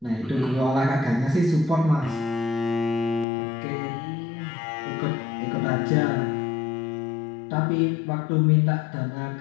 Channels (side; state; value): right; drops out; at 3.2 s